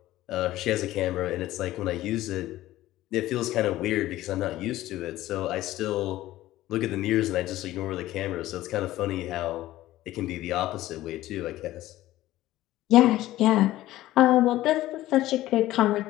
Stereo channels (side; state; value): right; quieter; 15.5 dB